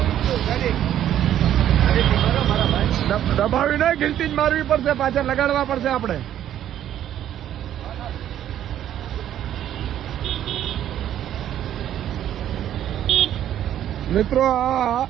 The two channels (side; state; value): left; quieter; 11.2 dB